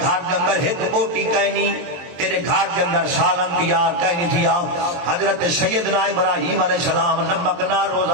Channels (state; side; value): late; left; 23 ms